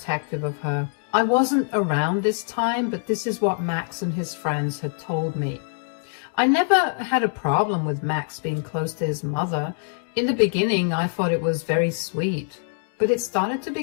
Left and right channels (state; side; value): silent; right; 63 dB below the other